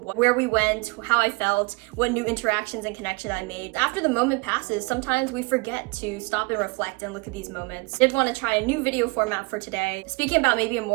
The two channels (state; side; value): quieter; left; 26.8 dB